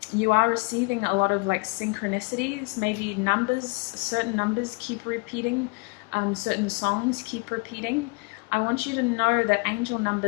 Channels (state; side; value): quieter; right; 30.1 dB